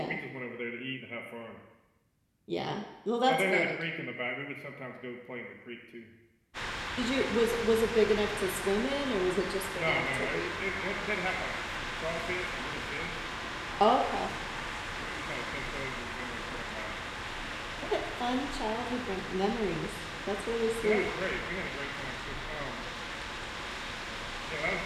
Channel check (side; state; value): both; identical; correlation 1.00